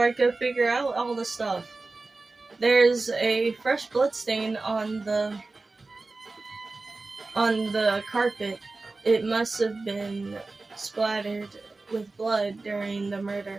I can figure out all the stuff. There's a fresh blood stain on the carpet. It must have been splattered with blood during the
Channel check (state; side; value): quieter; left; 3.5 dB